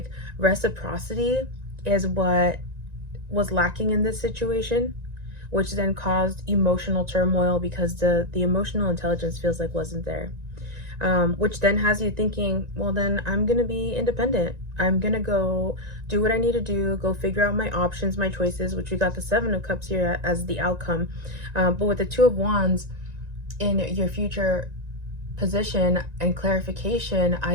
reciprocity is what was lacking in this situation, which then caused emotional turmoil, because the emotional intelligence feels like wasn't there. Which then has you thinking, well, then I'm gonna be independent. I'm gonna go do what I need to do, go figure out my options, my choices, which we got the Seven of Cups here as the outcome. But with the Two of Wands in your future position and clarification,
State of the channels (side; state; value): left; late; 1.9 ms